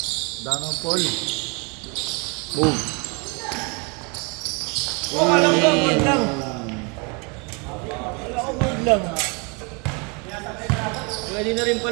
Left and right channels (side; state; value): left; quieter; 32.3 dB